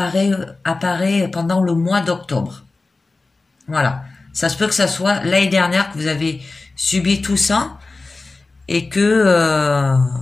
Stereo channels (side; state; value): right; quieter; 3.5 dB